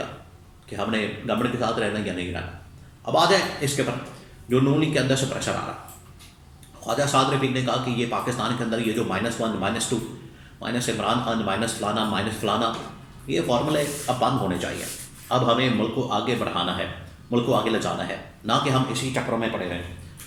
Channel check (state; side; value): identical; both; correlation 1.00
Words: कि हमने गवर्नमेंट के साथ रहना या नहीं रहना। अब आ जाए इसके पर जो नून लीग के अंदर से प्रेशर आ रहा। ख्वाजा साद रफीक ने कहा कि ये पाकिस्तान के अंदर ये जो -1 -2 माइनस इमरान खान माइनस फलाना ये फार्मूले अब बंद होने चाहिए। अब हमें मुल्क को आगे बढ़ाना है, मुल्क को आगे ले जाना है, ना कि हम इसी चक्रों में पड़े रहें